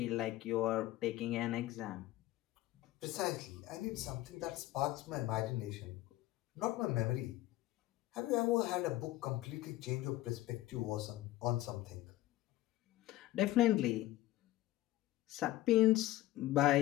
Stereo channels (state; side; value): quieter; right; 16.0 dB